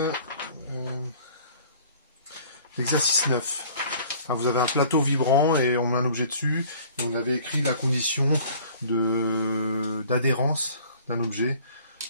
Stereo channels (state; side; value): inverted; both; correlation -0.51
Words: 9. Vous avez un plateau vibrant et on met un objet dessus. Et on avait écrit la condition d'adhérence d'un objet